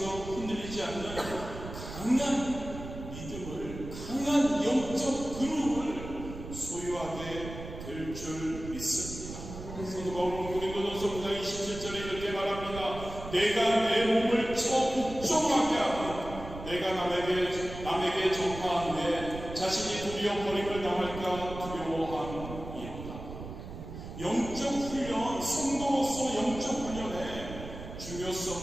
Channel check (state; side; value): noise; right; rumble, 10 dB below the sound